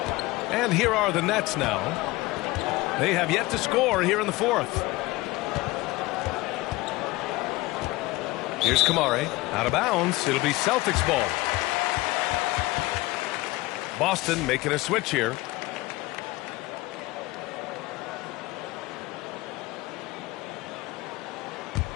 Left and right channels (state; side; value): quieter; right; 20.4 dB